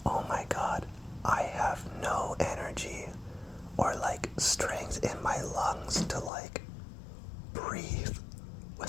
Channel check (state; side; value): drops out; right; at 6.3 s